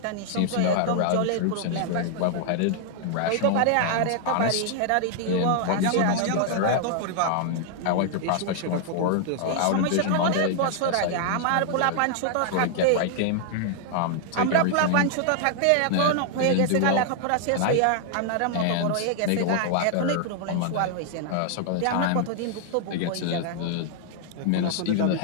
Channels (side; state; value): both; different; correlation -0.01